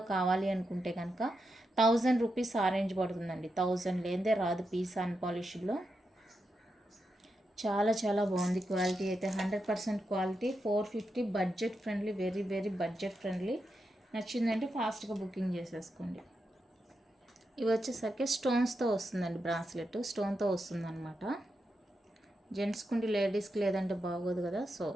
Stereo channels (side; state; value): both; normal; correlation 0.86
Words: కావాలి అనుకుంటే కనుక 1000 రూపీస్ ఆరెంజ్ పడుతుందండి. 1000 లేదే రాదు పీస్ అన్పాలిష్డ్లో. చాలా చాలా బాగుంది క్వాలిటీ అయితే. 100% quality. 450. Budget friendly, very very budget friendly. నచ్చిందంటే ఫాస్ట్గా బుకింగ్ చేసేసుకోండి. ఇవి వచ్చేసరికి స్టోన్స్తో వస్తుందండి. బ్రాస్లెట్ స్టోన్తో వస్తుంది అనమాట. జెంట్స్కుండి లేడీస్కి లేదంటే బాగోదు కదా, సో